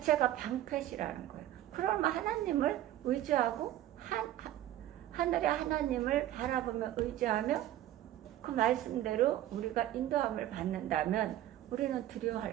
방패시라는 거예요. 그러면 하나님을 의지하고 하늘의 하나님을 바라보며 의지하며 그 말씀대로 우리가 인도함을 받는다면 우리는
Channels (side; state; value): left; quieter; 13.2 dB